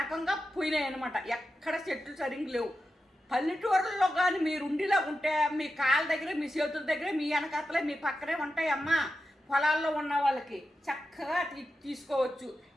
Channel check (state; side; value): normal; both; correlation 0.90